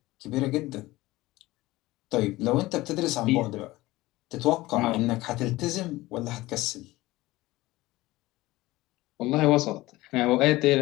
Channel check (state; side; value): quieter; right; 18.7 dB